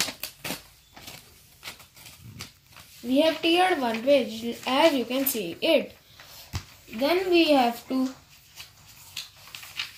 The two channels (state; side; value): identical; both; correlation 1.00